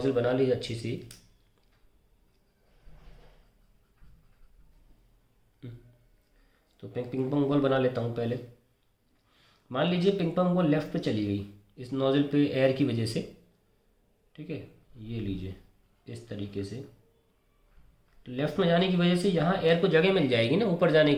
बना लीजिए अच्छी सी, तो पिंग पोंग बॉल बना लेता हूँ पहले। मान लीजिए पिंग पोंग बॉल लेफ्ट पे चली गई इस नोजल पे एयर की वजह से, ठीक है, ये लीजिए इस तरीके से। तो लेफ्ट में जाने की वजह से यहाँ एयर को जगह मिल जाएगी ना ऊपर जाने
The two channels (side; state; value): both; identical; correlation 1.00